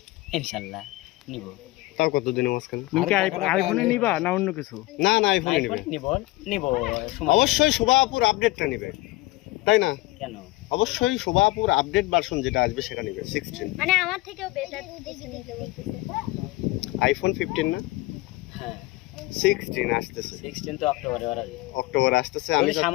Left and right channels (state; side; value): quieter; right; 20.1 dB